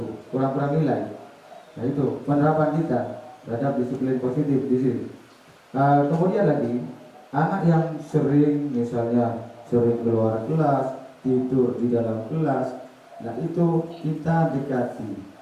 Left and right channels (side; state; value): both; identical; correlation 1.00